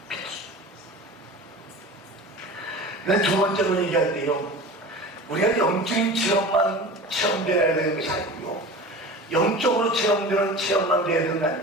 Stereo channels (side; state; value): both; normal; correlation 0.35